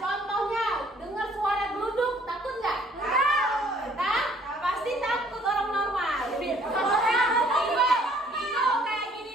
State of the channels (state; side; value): normal; both; correlation 0.60